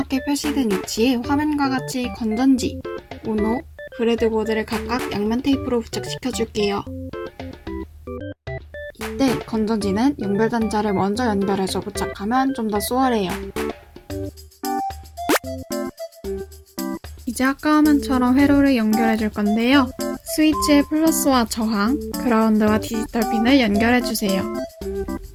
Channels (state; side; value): identical; both; correlation 1.00